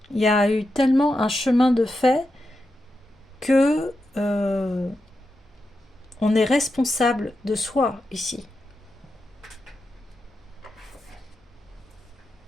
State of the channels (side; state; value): both; normal; correlation 0.88